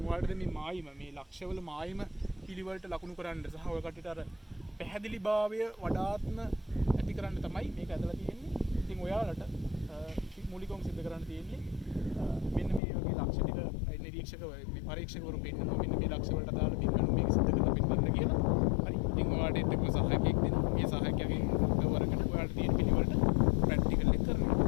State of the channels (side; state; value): right; drops out; at 12.8 s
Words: ඔයාලට මේ මායිම මේ ලක්ෂවල මායිම පිළිවෙලට ලකුණු කරන්න සහ ඔය කටට අර පැහැදිලිභාවය වඩාත්ම ඇති කරන්න තමයි මේක ඇදලා තියෙන්නේ. ඉතින් ඔයාලට මූලිකවම සිද්ධ කරන්න තියෙන්නේ මෙන්න මේ වගේ ලක්ෂ ටික නිරීක්ෂක පරීක්ෂකවරු පෙන්නනවා. මෙන්න මේ ලක්ෂ වලට අදාළ බිම්බණු මේක සිද්ධ කරලා පෙන්නන්න කියලා. හරි. ඉතින් ඔයාලට එක්ක සහායකයෙක් දෙනවා. මේ සහායකයාගෙන් උදව් අරගෙන ඔයාලට තියෙන පිළිවෙලට ප්‍රැක්ටිකල් එක කරනවා.